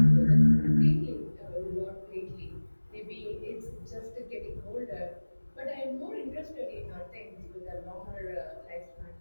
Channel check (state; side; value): inverted; both; correlation -1.00